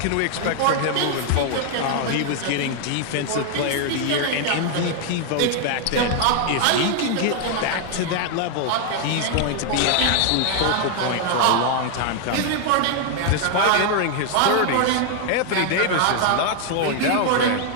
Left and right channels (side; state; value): both; different; correlation 0.00